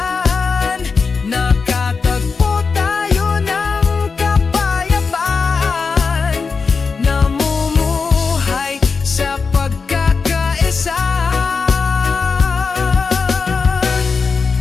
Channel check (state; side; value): quieter; right; 4.9 dB